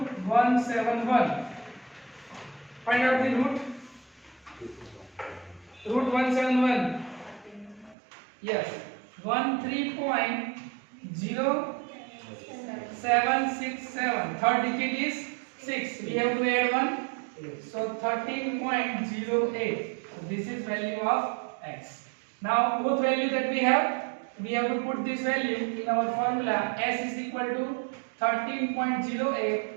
171. Find out the root. Root 171. Yes. 13.0767. Third digit is 6. We have to add 1. So 13.08. So this is value of x. Now both values that we have to put this value in our formula. S is equal to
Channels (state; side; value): drops out; left; at 8.0 s